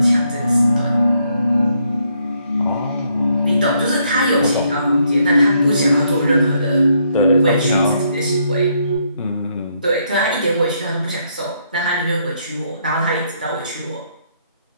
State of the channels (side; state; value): both; inverted; correlation -0.73